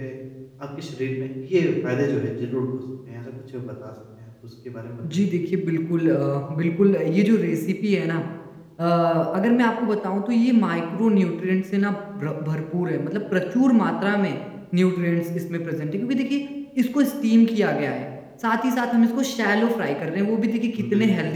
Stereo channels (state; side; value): identical; both; correlation 1.00